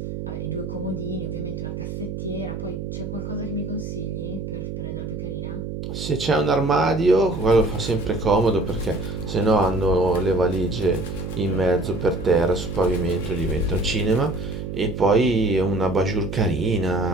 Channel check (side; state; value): right; noise; hum, 6 dB below the sound